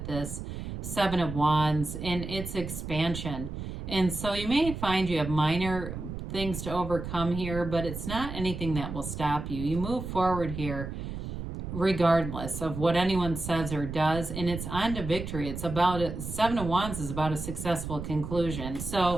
this 7 of Wands, and it's expansion. And so you may find you have minor things to overcome here, but it's not anything that will stop you. You move forward here regardless of what anyone says or does, and it's on to victory. It's about 7 of Wands is about a successful conclusion.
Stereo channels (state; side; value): noise; right; rumble, 7 dB below the sound